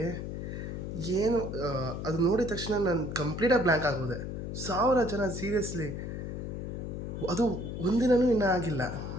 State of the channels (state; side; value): noise; left; hum, 5 dB below the sound